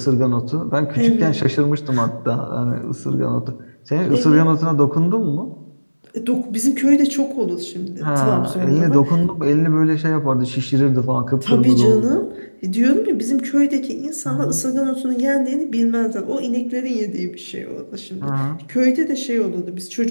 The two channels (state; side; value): inverted; both; correlation -1.00